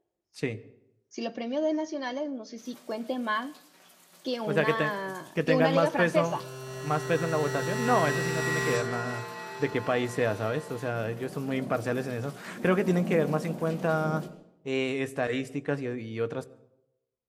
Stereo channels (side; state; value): both; identical; correlation 1.00